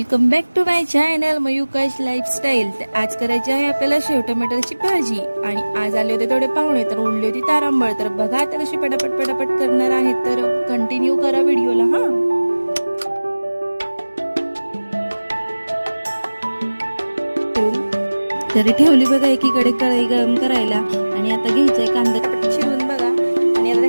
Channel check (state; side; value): inverted; both; correlation -1.00